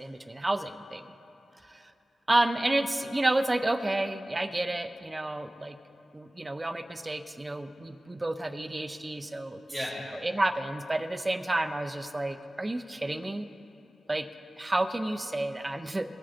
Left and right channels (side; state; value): both; normal; correlation 0.98